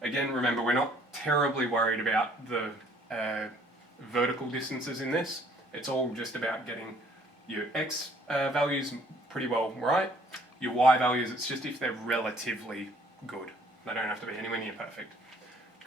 Again, remember, we're not terribly worried about the vertical distances in this. It's all just about getting your X values pretty well right. Your Y values, it's just if they're relatively good. They don't have to be anywhere near perfect.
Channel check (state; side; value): normal; both; correlation 0.60